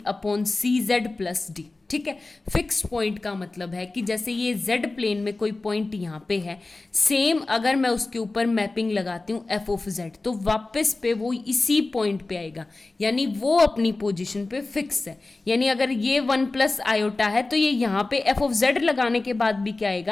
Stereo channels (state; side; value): quieter; right; 3.3 dB